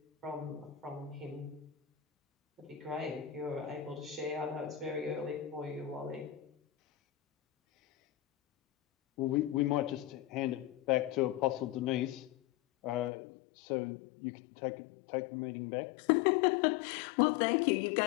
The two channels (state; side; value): drops out; right; at 13.1 s